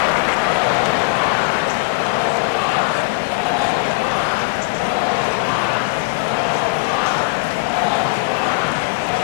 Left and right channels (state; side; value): quieter; right; 33.6 dB